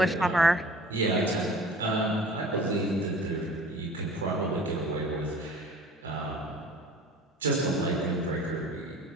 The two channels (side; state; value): both; normal; correlation 0.45